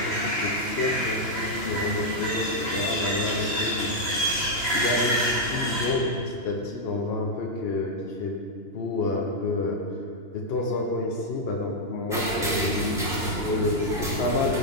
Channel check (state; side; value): late; right; 2.9 ms